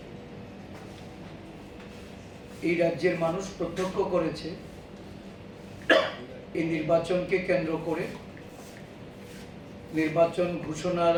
এই রাজ্যের মানুষ প্রত্যক্ষ করেছে এই নির্বাচনকে কেন্দ্র করে নির্বাচন ঘোষণার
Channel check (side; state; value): both; identical; correlation 1.00